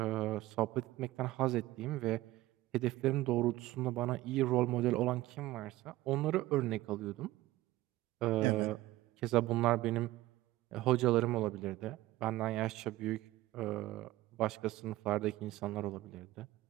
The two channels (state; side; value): quieter; left; 17.0 dB